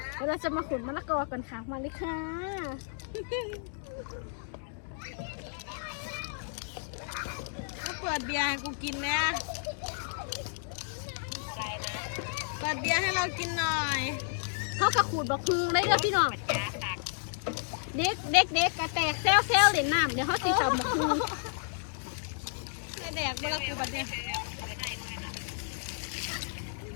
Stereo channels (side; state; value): right; silent; digital silence